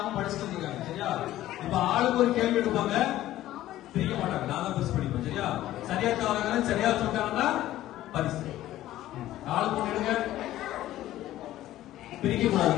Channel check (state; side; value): quieter; right; 14.3 dB